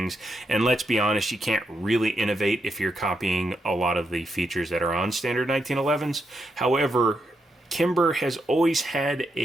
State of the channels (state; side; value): normal; both; correlation 0.82